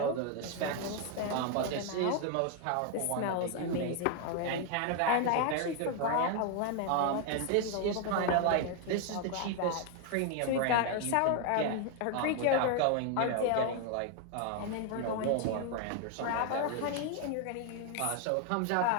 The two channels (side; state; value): both; different; correlation 0.01